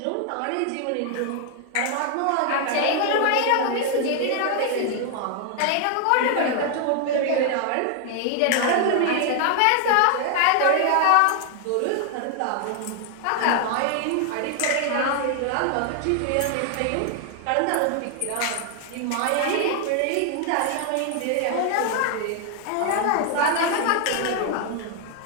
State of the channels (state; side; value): different; both; correlation 0.00